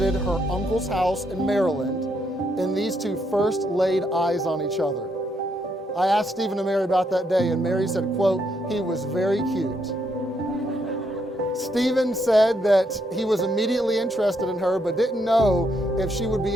her uncle's house in Maryland, and these two first laid eyes on each other. I asked Stephen and Mary about that day, and Mary said, quote, "He was very cute." Stephen said that he was immediately interested in her, but didn't know if she would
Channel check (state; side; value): normal; both; correlation 0.76